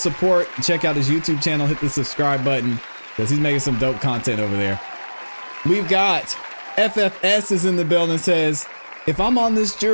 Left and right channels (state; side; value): inverted; both; correlation -1.00